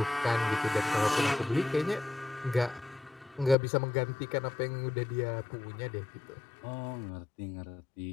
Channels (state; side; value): drops out; right; at 3.6 s